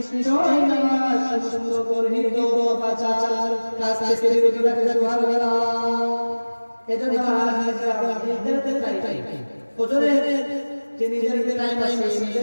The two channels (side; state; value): both; inverted; correlation -1.00